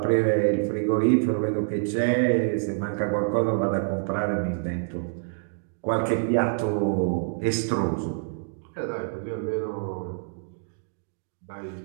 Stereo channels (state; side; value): silent; left; digital silence